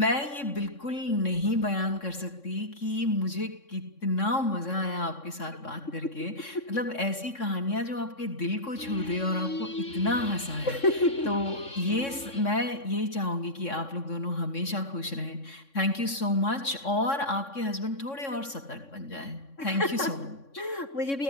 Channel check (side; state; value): right; late; 3.6 ms